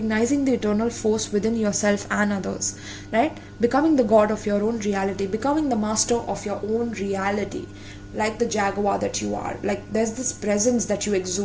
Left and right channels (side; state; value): both; identical; correlation 1.00